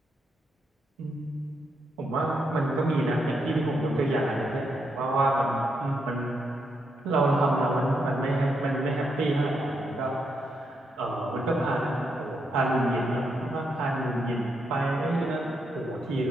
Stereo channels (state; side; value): normal; both; correlation 0.80